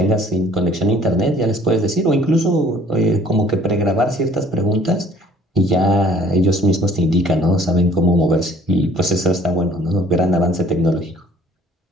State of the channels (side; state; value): both; normal; correlation 0.55